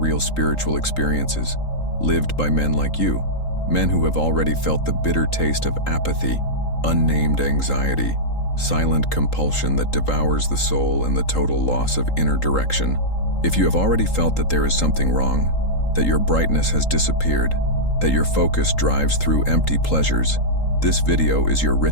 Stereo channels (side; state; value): right; late; 3.8 ms